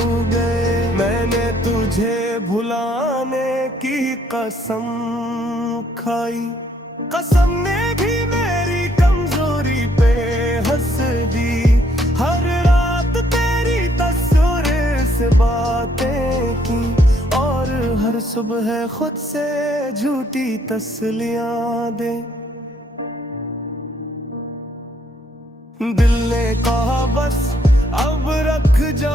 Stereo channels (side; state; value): both; normal; correlation 0.68